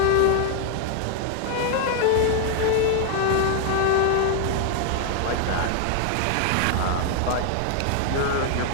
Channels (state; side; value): different; both; correlation 0.00